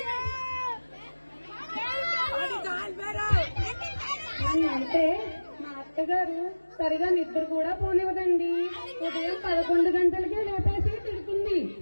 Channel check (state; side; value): inverted; both; correlation -1.00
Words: అంటే మా అత్తగారు సరిగా నిద్ర కూడా పోనివ్వదండి. ఉదయం 11 గంటలకే లేపేసి తిడుతుంది.